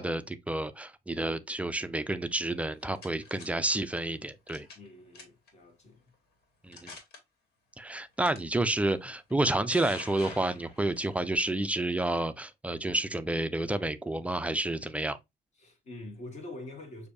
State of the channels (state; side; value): normal; both; correlation 0.70